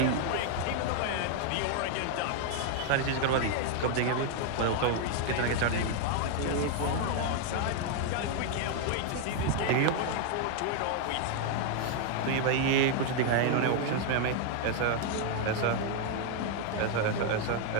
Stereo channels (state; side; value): different; both; correlation 0.00